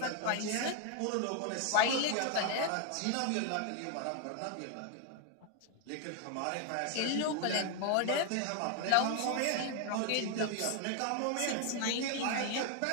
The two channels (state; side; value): different; both; correlation 0.00